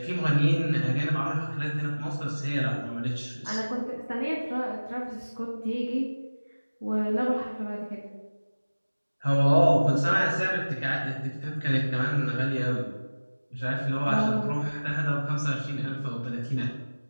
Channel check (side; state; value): both; inverted; correlation -1.00